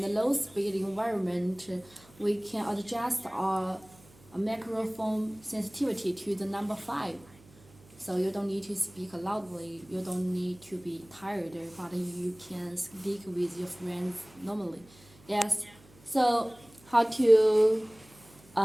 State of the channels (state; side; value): noise; right; hum, 25 dB below the sound